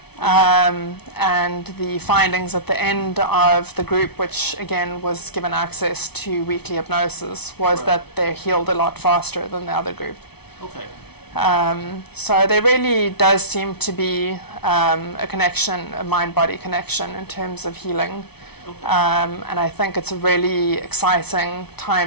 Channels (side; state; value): right; late; 0.98 ms